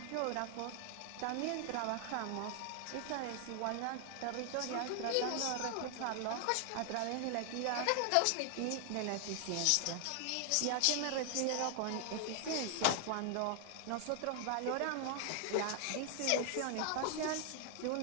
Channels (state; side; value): different; both; correlation 0.00